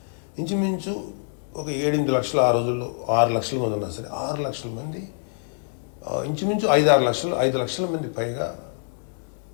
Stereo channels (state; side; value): silent; right; 62 dB below the other